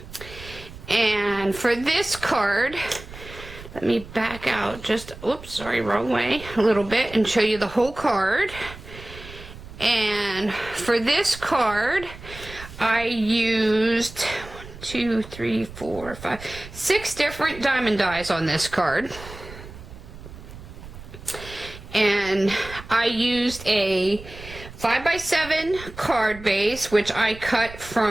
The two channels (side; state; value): right; noise; rumble, 15 dB below the sound